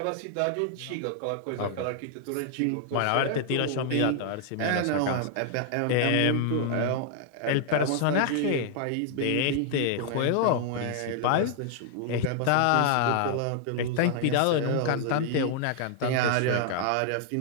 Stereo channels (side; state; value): both; different; correlation 0.00